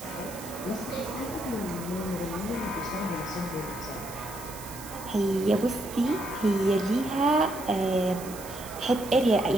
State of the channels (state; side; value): noise; right; hiss, 14 dB below the sound